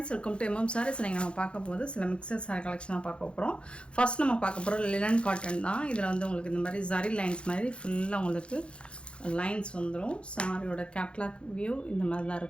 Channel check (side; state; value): right; late; 0.057 ms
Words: welcome to MM Sarees. நீங்கள் நம்ம பார்க்க போது சில மிக்சர் சாரி கலெக்ஷனாக பார்க்க போகிறோம். ஃபர்ஸ்ட் நம்ம பார்க்க போகிறோம் லினன் காட்டன் தான். இதில் வந்து உங்களுக்கு இந்த மாதிரி ஜரி லைன்ஸ் மாதிரி ஃபுல்லாக உங்களுக்கு லைன்ஸ் வந்துடும். சாரியோட கேட்லாக் வியூ இந்த மாதிரி தான்